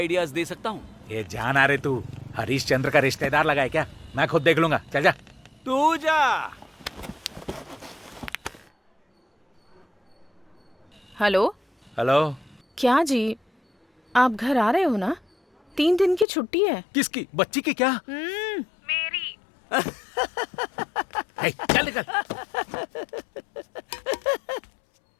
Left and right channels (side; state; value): right; drops out; at 16.2 s